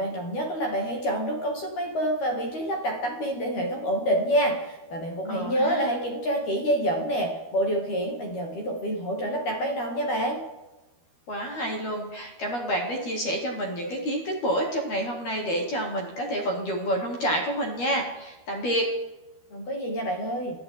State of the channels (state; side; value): late; right; 12 ms